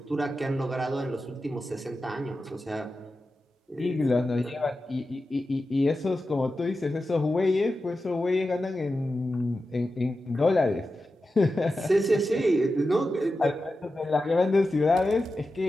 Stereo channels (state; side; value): normal; both; correlation 0.92